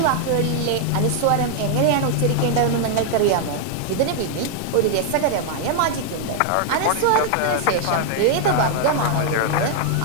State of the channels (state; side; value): different; both; correlation 0.00